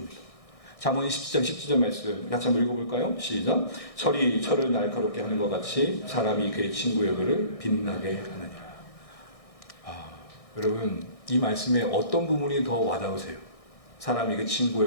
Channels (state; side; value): late; right; 1.6 ms